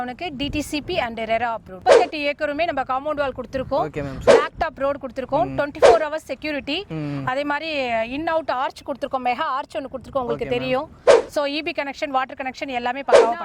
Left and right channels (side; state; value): both; identical; correlation 1.00